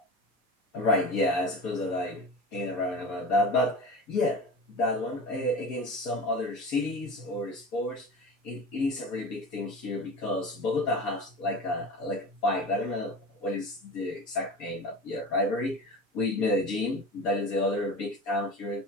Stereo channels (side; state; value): both; normal; correlation 0.32